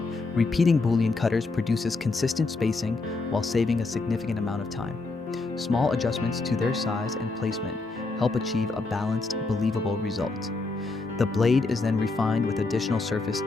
repeating Boolean cutters produces consistent spacing while saving a significant amount of time. Small adjustments to their size and placement help achieve a balanced, believable result. The blade is then refined with additional surface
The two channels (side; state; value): right; quieter; 3.6 dB